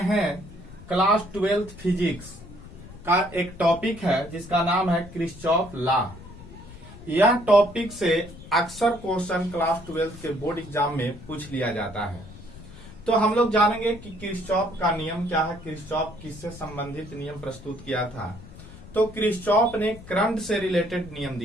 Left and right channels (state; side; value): noise; left; rumble, 17 dB below the sound